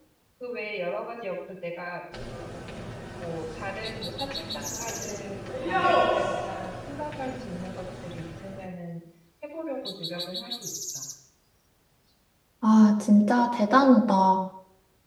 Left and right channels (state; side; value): identical; both; correlation 1.00